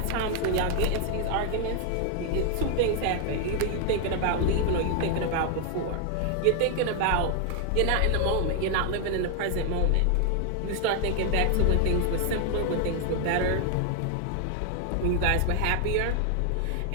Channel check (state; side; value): different; both; correlation 0.00